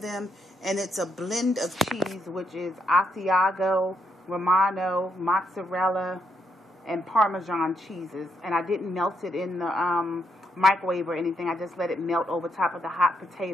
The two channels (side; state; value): both; normal; correlation 0.78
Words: And it's a blend of cheese, which is Asiago, Romano, mozzarella, and Parmesan cheeses. And I didn't melt it in the microwave or anything. I just let it melt over top of the hot